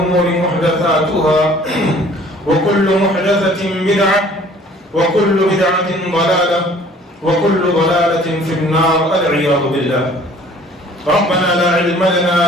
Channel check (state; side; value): normal; both; correlation 0.53